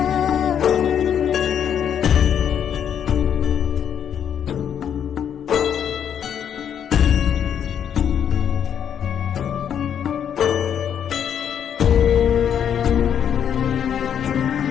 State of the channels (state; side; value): quieter; right; 8.7 dB